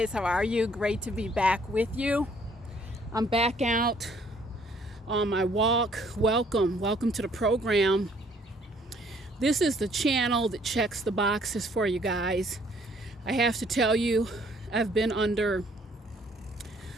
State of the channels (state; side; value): normal; both; correlation 0.62